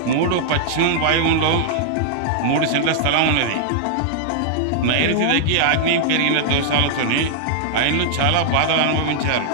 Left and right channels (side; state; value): both; different; correlation -0.01